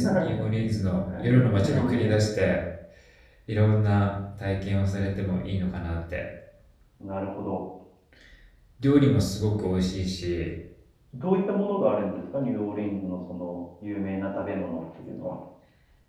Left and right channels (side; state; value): both; identical; correlation 1.00